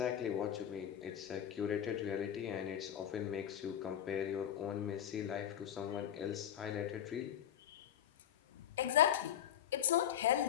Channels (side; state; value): right; quieter; 10.1 dB